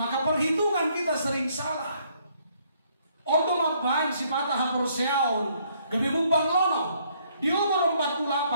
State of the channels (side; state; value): both; inverted; correlation -0.67